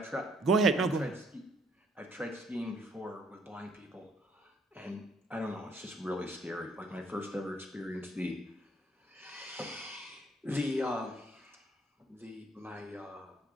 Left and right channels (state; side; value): normal; both; correlation 0.65